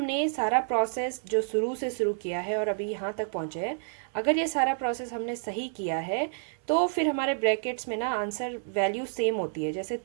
सारा प्रोसेस जो शुरू से शुरू किया है और अभी यहाँ तक पहुँचे हैं, अगर ये सारा प्रोसेस हमने सही किया है तो फिर हमारे ब्रैकेट्स में ना आंसर वैल्यू सेम होती है। जैसे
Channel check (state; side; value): silent; left; 58 dB below the other